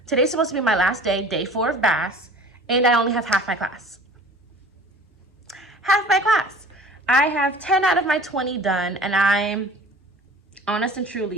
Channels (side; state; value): both; normal; correlation 0.45